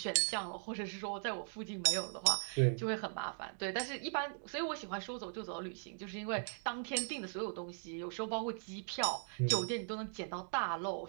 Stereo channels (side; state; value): left; silent; digital silence